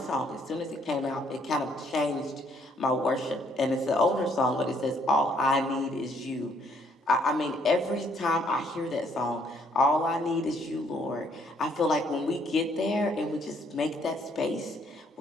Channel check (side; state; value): both; normal; correlation 0.67